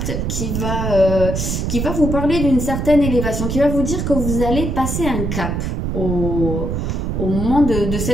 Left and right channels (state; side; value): noise; right; rumble, 1 dB below the sound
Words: qui va vous parler d'une certaine élévation, qui va vous dire que vous allez passer un cap au moment de